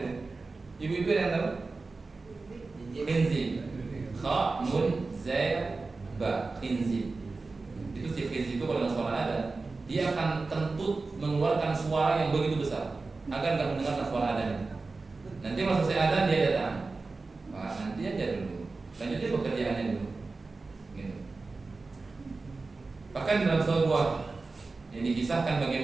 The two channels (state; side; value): quieter; left; 3.8 dB